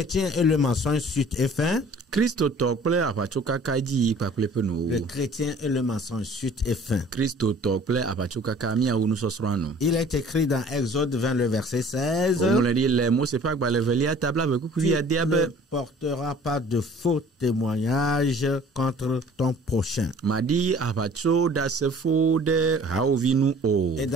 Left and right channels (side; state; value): both; normal; correlation 0.50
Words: et le mensonge, suite et fin. Christo tokple apachoka kaji paklepeno. Le chrétien et le mensonge, suite et fin. Christo tokple apachoka kamia unu sosrano. Il est écrit dans Exode 20, le verset 16. On le dit, les mots, c'est pas que le velia tabla avec Tu ne porteras pas de faux témoignages contre ton prochain. Madi apacho da se fo de haovinu o. Et